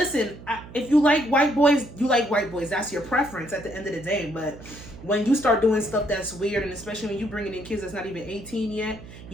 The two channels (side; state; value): right; noise; hum, 16 dB below the sound